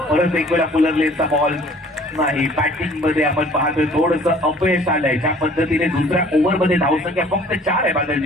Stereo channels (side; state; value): both; normal; correlation 0.53